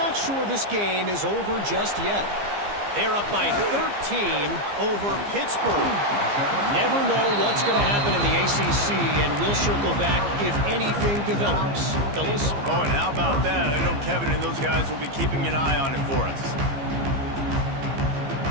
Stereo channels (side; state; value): left; late; 15 ms